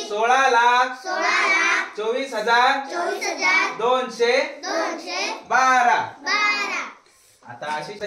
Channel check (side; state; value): both; identical; correlation 1.00